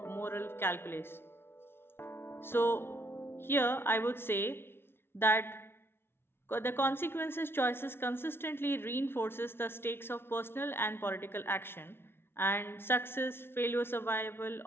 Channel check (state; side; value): late; right; 0.11 ms